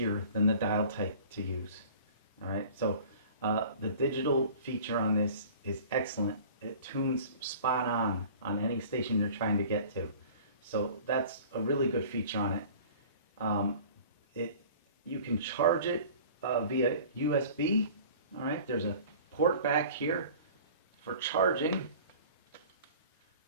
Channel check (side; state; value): both; inverted; correlation -0.44